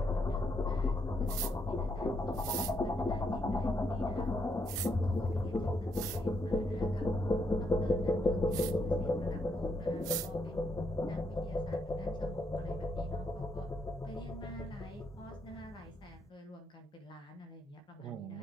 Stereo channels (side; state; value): both; normal; correlation 0.77